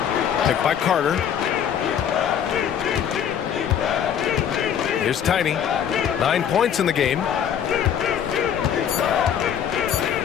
Picked by Carter. Here's Tiny. 9 points in the game.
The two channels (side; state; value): right; quieter; 8.8 dB